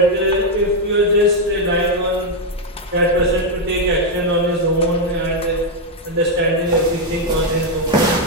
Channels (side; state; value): both; normal; correlation 0.01